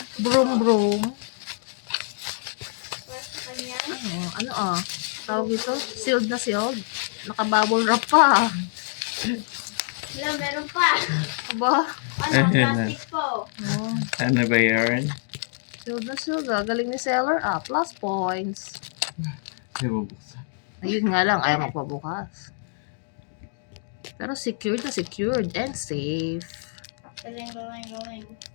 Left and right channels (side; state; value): right; silent; digital silence